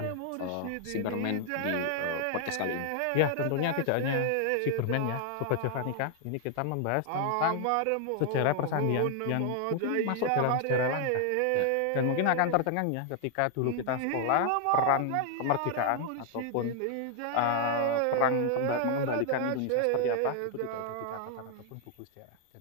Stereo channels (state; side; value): different; both; correlation 0.00